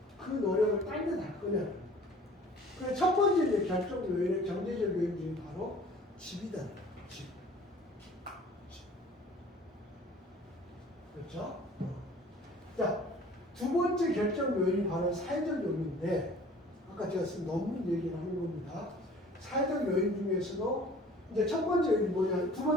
그 노력을 딴 데 할 거냐. 그래서 첫 번째 이제 결정 요인의 경제적 요인 중에 바로 집이다. 집. 그렇죠? 자, 두 번째 결정 요인이 바로 사회적 요인인데, 아까 제가 쓴 논문 얘기를 하는 겁니다. 사회적 요인 중에서도 이제 첫 번째 요인이 뭐냐, 두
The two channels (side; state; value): both; normal; correlation 0.49